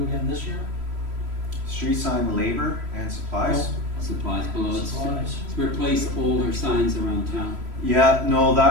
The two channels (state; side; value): late; left; 3.0 ms